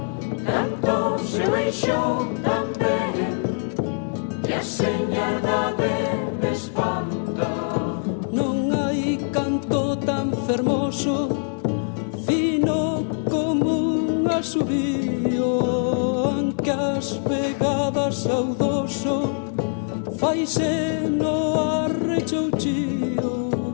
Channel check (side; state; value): right; silent; 63 dB below the other